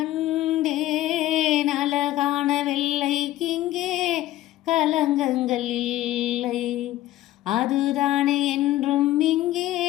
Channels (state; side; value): quieter; right; 15.0 dB